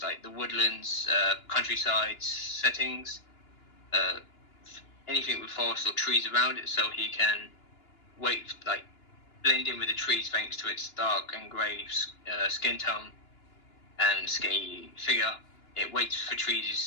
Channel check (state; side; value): late; right; 2.9 ms